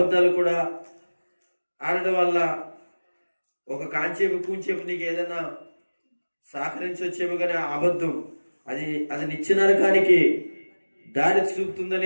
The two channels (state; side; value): inverted; both; correlation -1.00